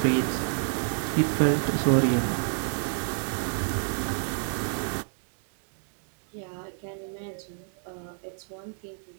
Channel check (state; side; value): silent; left; 59 dB below the other